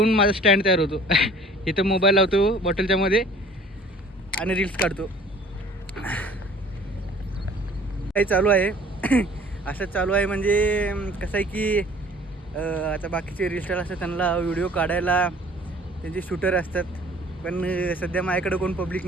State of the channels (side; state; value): both; normal; correlation 0.50